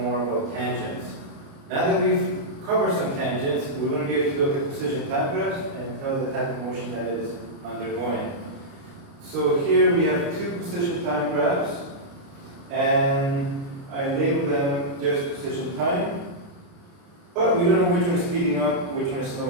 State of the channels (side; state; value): left; late; 29 ms